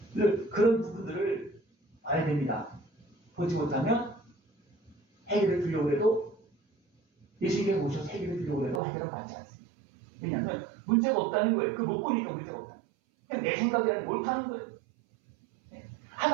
그런 부분들을 봐야 됩니다. 보지 못하면 해결을 주려고 해도 예수님께 오셔서 해결을 주려고 해도 해결을 받지 않습니다. 왜냐하면 문제가 없다는 거예요. 그 못 보니까 문제가 없다. 그냥 내 생각이라는 옳다는 거예요.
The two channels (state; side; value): drops out; left; at 8.8 s